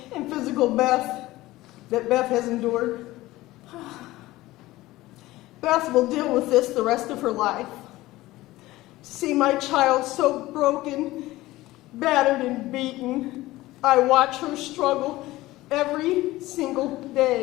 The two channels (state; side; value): quieter; right; 17.8 dB